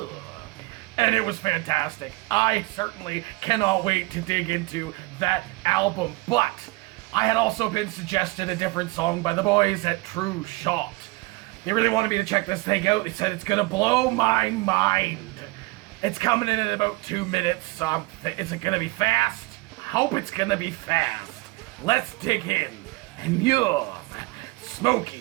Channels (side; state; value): left; quieter; 23.3 dB